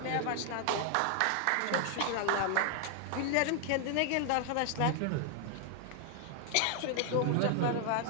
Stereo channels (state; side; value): different; both; correlation 0.00